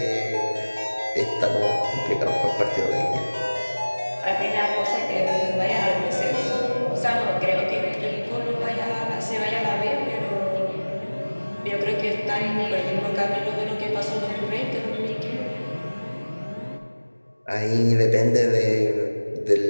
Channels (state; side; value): inverted; both; correlation -1.00